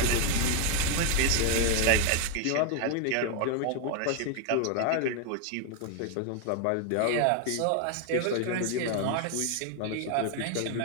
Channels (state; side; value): different; both; correlation 0.00